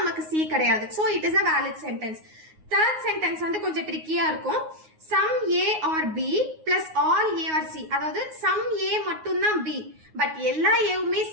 C கிடையாது. So it is a valid sentence. Third sentence வந்து கொஞ்சம் ட்ரிக்கியா இருக்கும். Some A or B plus all A or C. அதாவது some A மட்டும்தான் B. பட் எல்லா ஏவுமே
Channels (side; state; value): left; late; 9.5 ms